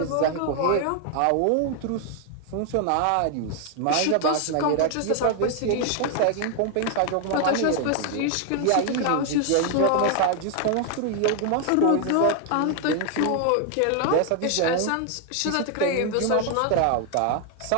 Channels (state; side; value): different; both; correlation 0.00